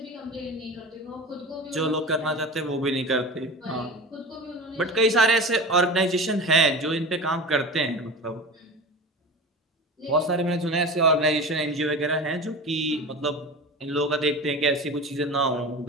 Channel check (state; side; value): normal; both; correlation 0.31